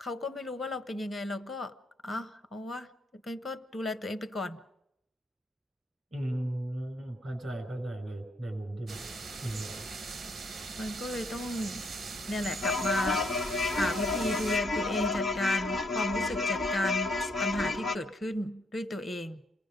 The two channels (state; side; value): normal; both; correlation 0.72